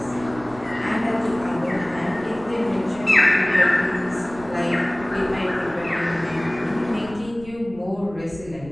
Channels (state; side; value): noise; right; rumble, 18 dB below the sound